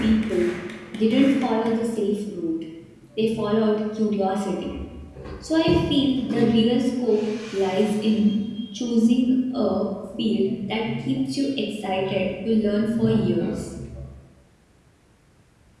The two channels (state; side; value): identical; both; correlation 1.00